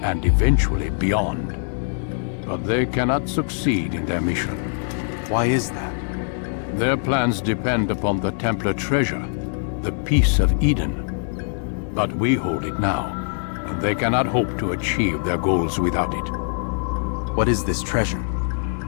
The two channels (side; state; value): right; silent; digital silence